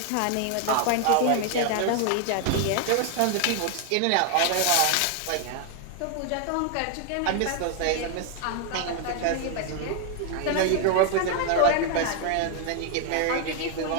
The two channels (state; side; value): different; both; correlation 0.00